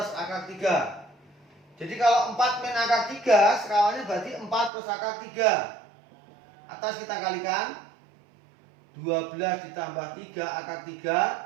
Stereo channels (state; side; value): drops out; left; at 4.7 s